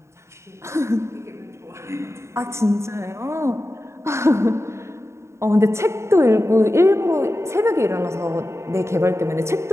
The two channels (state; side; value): late; left; 0.13 ms